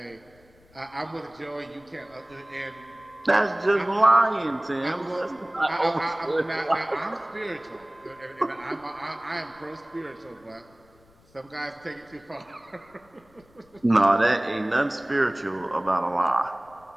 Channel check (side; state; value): left; noise; rumble, 29 dB below the sound